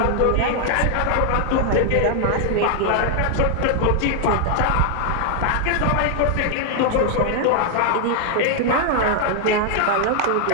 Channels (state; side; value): different; both; correlation 0.00